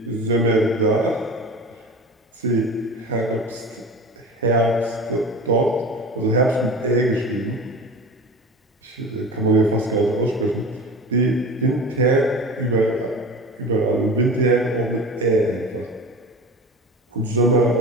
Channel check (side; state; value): both; normal; correlation 0.34